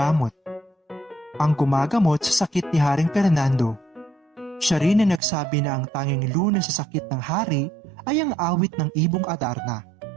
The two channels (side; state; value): left; drops out; at 5.2 s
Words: ang gumagamot sa sakit ni Haring Fernando. Siya rin ang nagsabi na ang tanging lunas sa sakit ng hari ay ang awit ng Ibong Adarna.